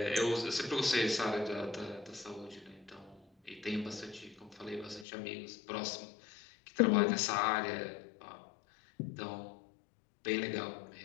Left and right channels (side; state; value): right; drops out; at 5.1 s